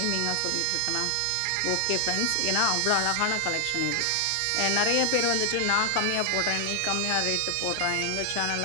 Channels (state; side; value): different; both; correlation 0.00